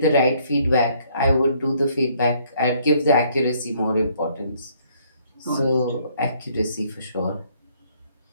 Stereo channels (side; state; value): both; inverted; correlation -0.65